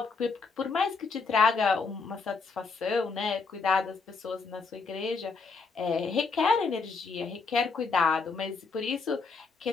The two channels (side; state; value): right; quieter; 4.6 dB